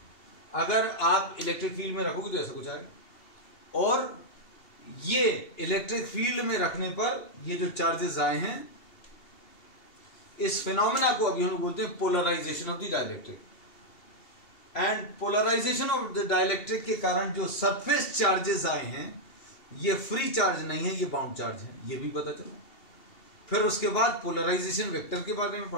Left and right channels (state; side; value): late; right; 2.7 ms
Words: अगर आप इलेक्ट्रिक फील्ड में रखोगे तो ऐसा कुछ आएगा। और ये इलेक्ट्रिक फील्ड में रखने पर ये जो चार्जेस आए हैं, इस फिनोमेना को अभी हम बोलते हैं polarization of the dielectric. And polarization of the dielectric के कारण जो सरफेस चार्जेस आए हैं ये फ्री चार्ज नहीं है, ये बाउंड चार्ज है, ये भी पता चला। फिर उसके बाद पोलराइजेशन वेक्टर के बारे में